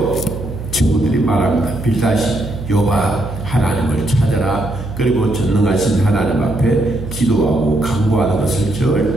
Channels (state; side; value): noise; right; hum, 9 dB below the sound